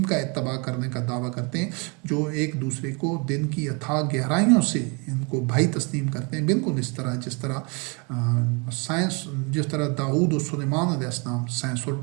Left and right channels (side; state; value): left; quieter; 31.7 dB